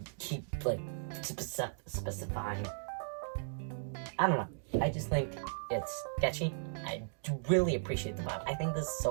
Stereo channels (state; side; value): silent; left; digital silence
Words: keep, specifying. I don't know. I just think it's sketchy. I do really appreciate the vibe. I think this is